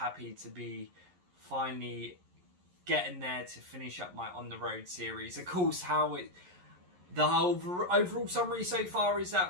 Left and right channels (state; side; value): late; left; 11 ms